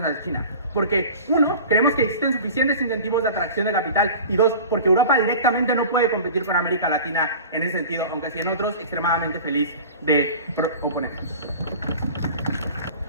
a China. Porque uno, creemos que existen suficientes incentivos de atracción de capital y dos, porque Europa directamente no puede competir con América Latina en ese sentido, aunque sí en otros extremadamente feliz de oponerse.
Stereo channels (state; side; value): inverted; both; correlation -0.39